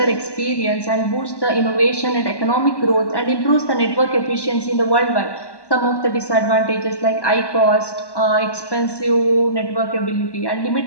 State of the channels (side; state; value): right; late; 1.1 ms